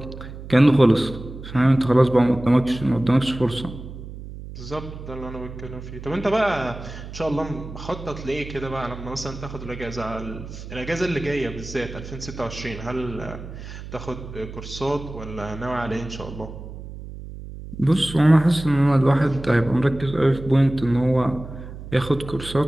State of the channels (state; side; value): noise; right; hum, 12 dB below the sound